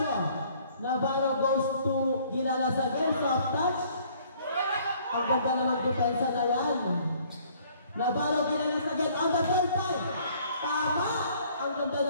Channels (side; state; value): both; inverted; correlation -0.59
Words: Navarro goes to Gilalas again. Soft touch. Ang ganda naman depensa na yan. Navarro Gilalas again on the third time. Tama! Ang ganda